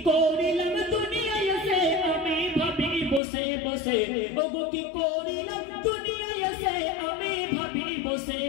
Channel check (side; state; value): right; drops out; at 3.2 s